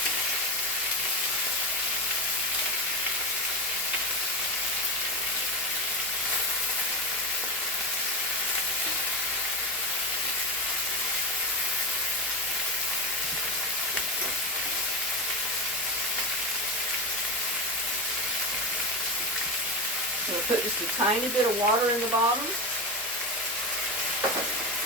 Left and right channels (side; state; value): both; normal; correlation 0.18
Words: We'll put just a tiny bit of water in the bottom.